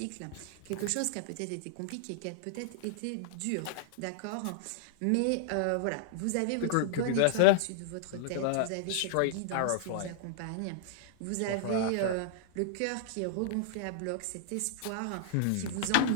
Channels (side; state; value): both; different; correlation -0.01